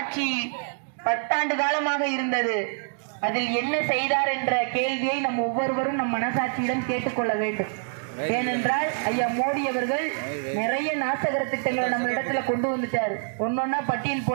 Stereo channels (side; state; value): left; silent; digital silence